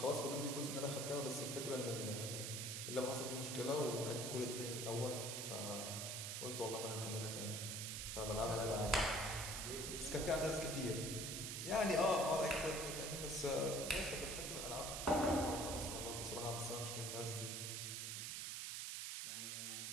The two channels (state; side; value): noise; right; hiss, 3 dB below the sound